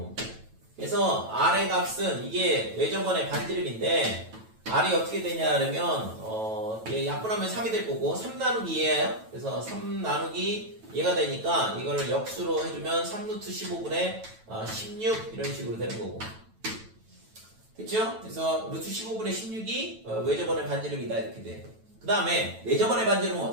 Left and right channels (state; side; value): late; left; 9.1 ms